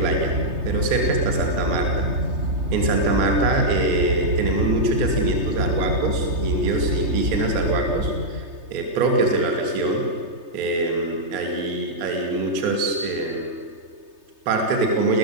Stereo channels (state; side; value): late; left; 3.2 ms